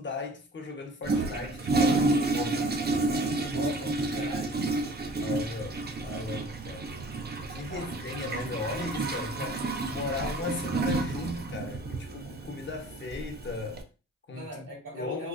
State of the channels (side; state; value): both; normal; correlation 0.48